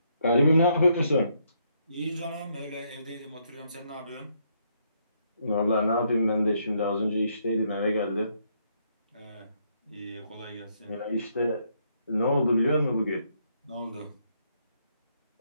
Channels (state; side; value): inverted; both; correlation -0.73